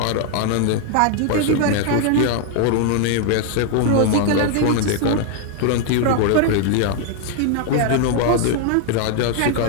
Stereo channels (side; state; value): both; different; correlation 0.00